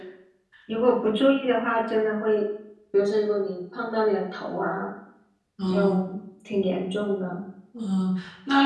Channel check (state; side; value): identical; both; correlation 1.00